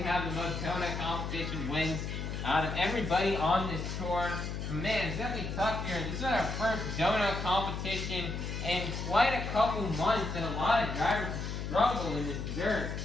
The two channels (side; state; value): left; noise; hum, 4 dB below the sound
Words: have the most donut competition wins out of everybody on this tour. Man, it's definitely tough here. This is our first donut competition in quite a couple months, and a lot of drivers struggle in this dirt.